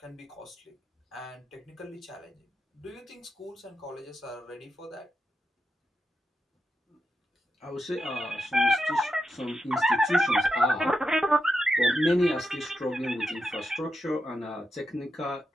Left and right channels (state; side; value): normal; both; correlation 0.87